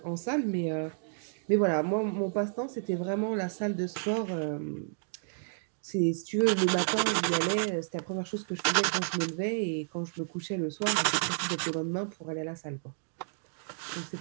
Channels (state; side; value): silent; left; digital silence